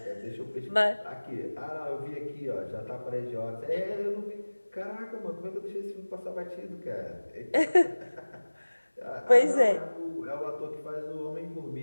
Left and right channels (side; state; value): both; inverted; correlation -1.00